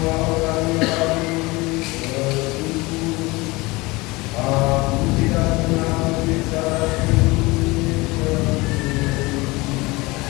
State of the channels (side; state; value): right; quieter; 23.0 dB